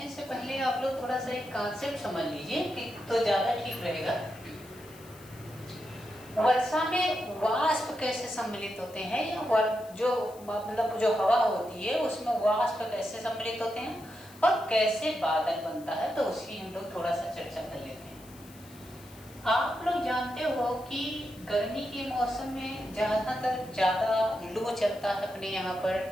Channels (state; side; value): noise; left; hiss, 22 dB below the sound